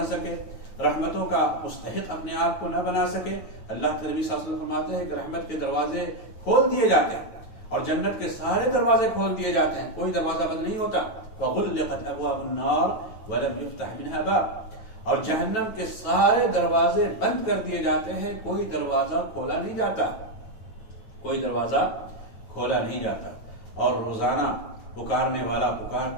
سکے، رحمتوں کا مستحق اپنے آپ کو نہ بنا سکے، اللہ کے نبی صلی اللہ علیہ وسلم فرماتے ہیں کہ رحمت کے دروازے کھول دیے جاتے ہیں اور جنت کے سارے دروازے کھول دیے جاتے ہیں، کوئی دروازہ بند نہیں ہوتا۔ وَغُلِّقَتْ أَبْوَابُ النَّارِ وَلَمْ يُفْتَحْ مِنْهَا بَابٌ، اور جہنم کے سارے دروازے بند کر دیے جاتے ہیں، کوئی دروازہ کھولا نہیں جاتا، کوئی دروازہ کھولا نہیں جاتا۔ اور روزانہ پکارنے والا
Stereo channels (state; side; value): late; right; 9.1 ms